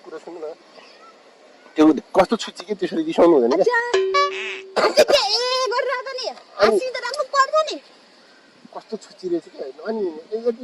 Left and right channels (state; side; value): identical; both; correlation 1.00